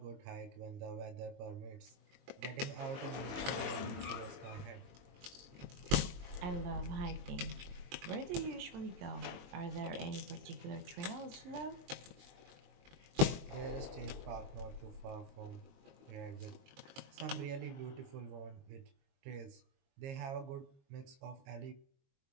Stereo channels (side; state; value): left; late; 22 ms